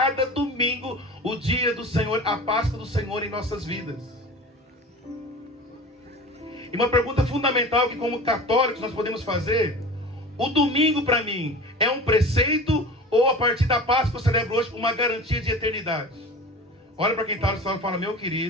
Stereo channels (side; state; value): both; normal; correlation 0.36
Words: domingo o dia do Senhor, a Páscoa do Senhor em nossas vidas. E uma pergunta fundamental que, como católicos, nós podemos fazer: o domingo para mim é um preceito, ou a partir da Páscoa eu celebro hoje uma garantia de eternidade? Olha para quem está no salão e fala: meu